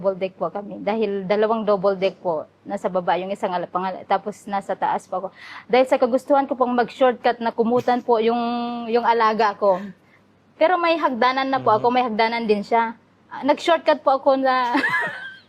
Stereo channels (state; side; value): identical; both; correlation 1.00